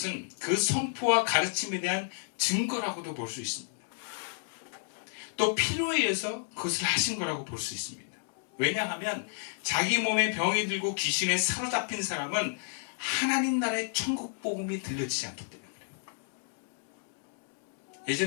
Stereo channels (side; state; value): right; silent; 57 dB below the other